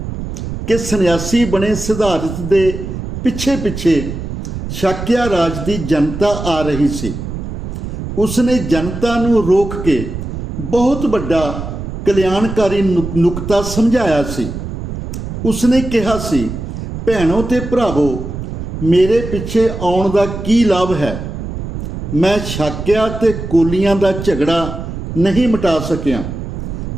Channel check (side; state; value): right; noise; rumble, 7 dB below the sound